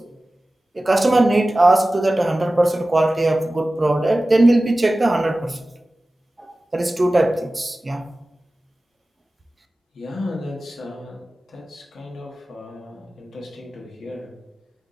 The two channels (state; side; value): normal; both; correlation 0.96